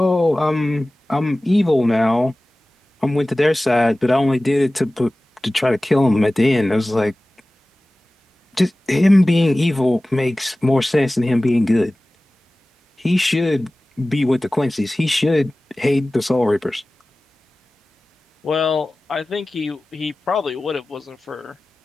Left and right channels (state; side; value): normal; both; correlation 0.97